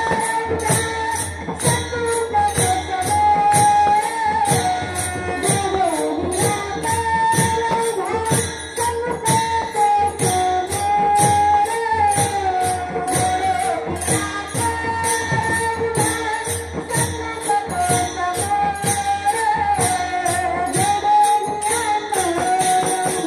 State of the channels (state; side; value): identical; both; correlation 1.00